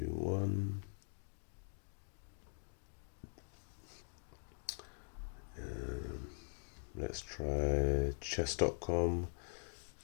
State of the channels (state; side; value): silent; right; digital silence